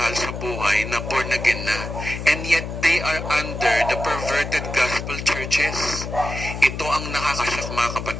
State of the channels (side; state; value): left; noise; hum, 7 dB below the sound